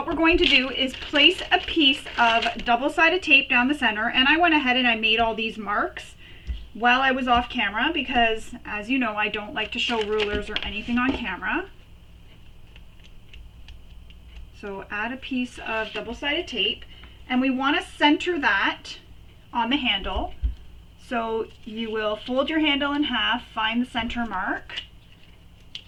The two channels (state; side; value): identical; both; correlation 1.00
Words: we're going to do is place a piece of double-sided tape down the center, and I went ahead and I made all these marks while I was off camera because, as you know, I don't like to show rulers or anything on camera. So add a piece of double-sided tape, and we want to center that on the handle. So you will fold your handle in half, find the center mark.